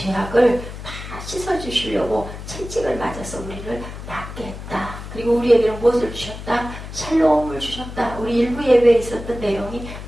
다 씻어주시려고 채찍을 맞아서 우리를 낫게 했다. 그리고 우리에게는 무엇을 주셨다? 샬롬을 주셨다. 우리 일부 예배에 있었던 내용이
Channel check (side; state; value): left; noise; hum, 11 dB below the sound